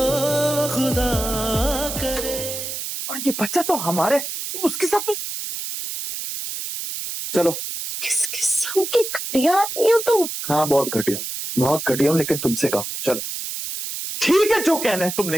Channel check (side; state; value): right; noise; hiss, 6 dB below the sound